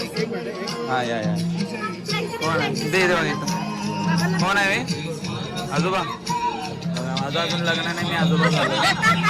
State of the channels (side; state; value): both; identical; correlation 1.00